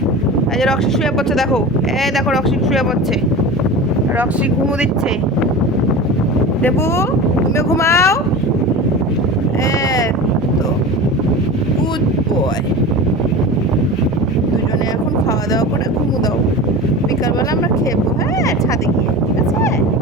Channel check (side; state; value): both; normal; correlation 0.31